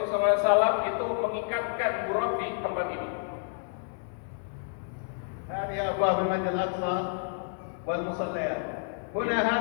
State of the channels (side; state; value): right; silent; 58 dB below the other